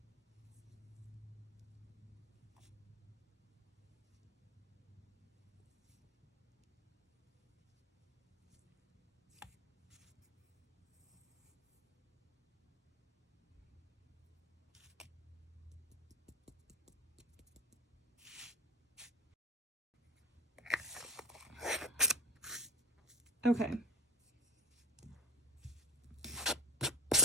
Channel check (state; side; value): normal; both; correlation 0.25